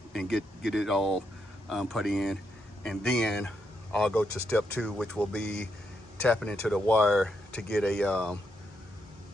and get it all put in, and then I'll go to step 2, which will be tapping into the wire to get a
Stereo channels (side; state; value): both; normal; correlation 0.80